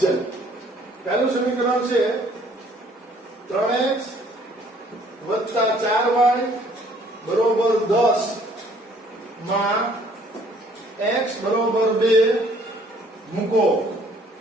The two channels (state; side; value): normal; both; correlation 0.60